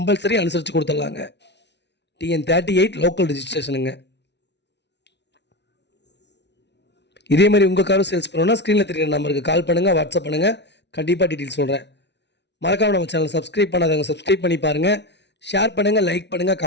அனுசரித்து கொடுத்துடலாங்க. TN38 local ரிஜிஸ்ட்ரேஷனுங்க. இதே மாதிரி உங்கள் காரும் சேல்ஸ் பண்ணணும்னா ஸ்க்ரீனில் தெரியுற நம்பருக்கு கால் பண்ணுங்கள், வாட்ஸ்அப் பண்ணுங்கள். கண்டிப்பாக டீட்டெயில்ஸ் சொல்கிறேன். மறக்காமல் நம்ம சேனல் சப்ஸ்கிரைப் பண்ணாதவங்க சப்ஸ்கிரைப் பண்ணி பாருங்கள். ஷேர் பண்ணுங்கள், லைக் பண்ணுங்கள்,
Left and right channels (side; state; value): right; late; 0.50 ms